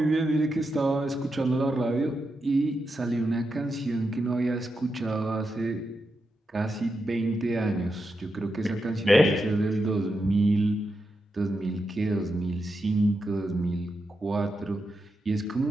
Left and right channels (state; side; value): normal; both; correlation 0.87